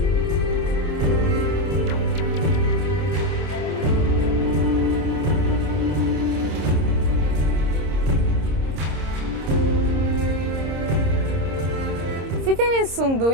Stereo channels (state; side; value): late; left; 26 ms